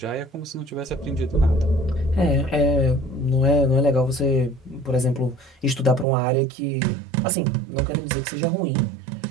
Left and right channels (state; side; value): drops out; left; at 6.1 s